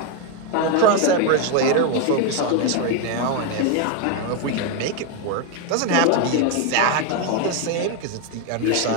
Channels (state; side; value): different; both; correlation 0.02